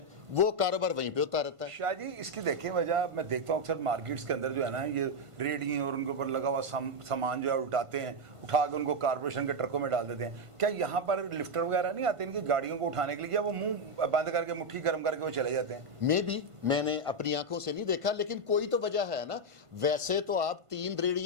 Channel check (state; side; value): late; left; 1.5 ms